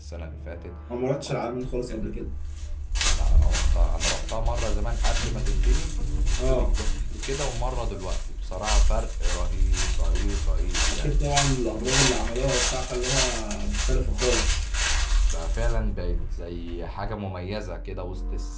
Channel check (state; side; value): identical; both; correlation 1.00